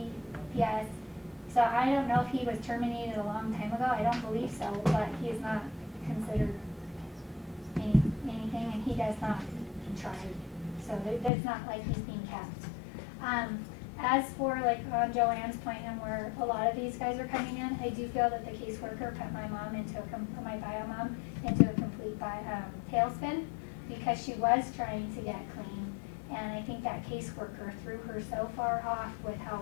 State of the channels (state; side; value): drops out; right; at 11.3 s